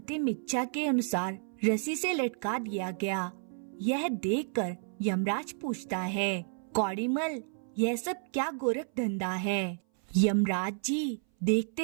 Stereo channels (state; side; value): silent; left; 57 dB below the other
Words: इच्छा के अनुसार रस्सी से लटका दिया गया। यह देखकर यमराज पूछता है, कौड़ीमल, यह सब क्या गोरख धंधा है? यमराज जी,